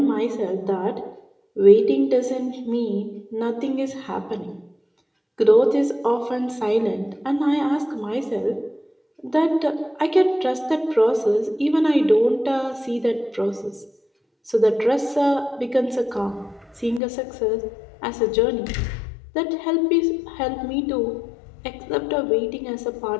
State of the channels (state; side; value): drops out; right; at 17.0 s